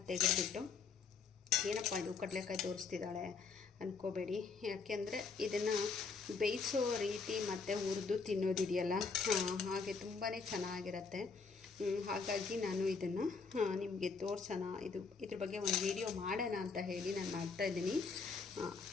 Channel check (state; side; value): quieter; right; 4.9 dB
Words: ತೆಗೆದುಬಿಟ್ಟು, ಏನಪ್ಪ ಇದು ಕಡಲೆಕಾಯಿ ತೋರಿಸ್ತಿದ್ದಾಳೆ ಅಂದ್ಕೋಬೇಡಿ. ಯಾಕೆಂದರೆ ಇದನ್ನು ಬೇಯಿಸೋ ರೀತಿ ಮತ್ತು ಹುರಿದು ತಿನ್ನೋದಿದೆಯಲ್ಲ, ಹಾಗೆ ತುಂಬಾ ಚೆನ್ನಾಗಿರುತ್ತೆ. ಹಾಗಾಗಿ ನಾನು ಇದನ್ನು ನಿಮಗೆ ತೋರಿಸೋಣ, ಇದ್ರ ಬಗ್ಗೆ ಒಂದು ವಿಡಿಯೋ ಮಾಡೋಣ ಅಂತ ಹೇಳಿ ನಾನು ಮಾಡ್ತಾಯಿದ್ದೀನಿ.